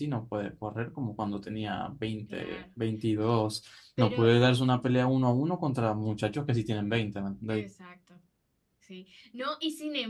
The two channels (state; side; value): identical; both; correlation 1.00